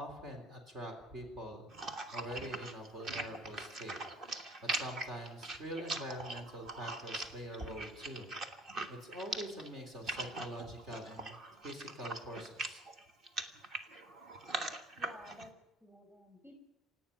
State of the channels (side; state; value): both; normal; correlation 0.50